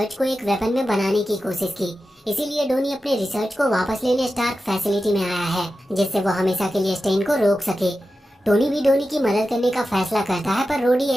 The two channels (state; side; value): normal; both; correlation 0.92